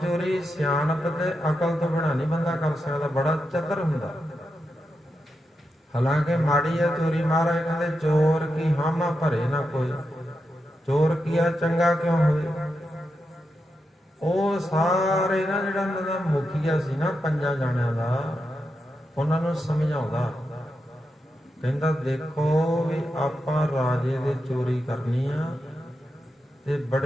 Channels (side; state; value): both; normal; correlation 0.87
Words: ਸਿਆਣਪ ਤੇ ਅਕਲ ਤੋਂ ਬਿਨਾਂ ਨਹੀਂ ਬੰਦਾ ਕਰ ਸਕਦਾ, ਬੜਾ ਚਤਰ ਹੁੰਦਾ। ਹਾਲਾਂਕਿ ਮਾੜੀ ਹੈ ਚੋਰੀ। ਮਹਾਰਾਜ ਕਹਿੰਦੇ ਚੋਰ ਕੀ ਹਾਮਾ ਭਰੇ ਨਾ ਕੋਈ, ਚੋਰ ਕੀਆ ਚੰਗਾ ਕਿਉਂ ਹੋਵੇ। ਉਹ ਸਾਰੇ ਨਾ ਜਿਹੜਾ ਉਹਨਾਂ ਦਾ ਮੁਖੀਆ ਸੀ ਨਾ 5 ਜਾਣਿਆਂ ਦਾ, ਉਹਨਾਂ ਨੂੰ ਸਮਝਾਉਂਦਾ, ਕਹਿੰਦਾ ਦੇਖੋ ਵੀ ਆਪਾਂ ਰਾਜੇ ਦੇ ਚੋਰੀ ਕਰਨੀ ਆ, ਤੇ